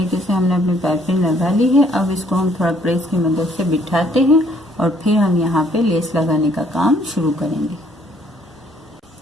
से हमने अपनी पाइपिंग लगा ली है। अब इसको हम थोड़ा प्रेस की मदद से बिठाते हैं और फिर हम यहाँ पे लेस लगाने का काम शुरू करेंगे।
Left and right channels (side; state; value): both; normal; correlation 0.64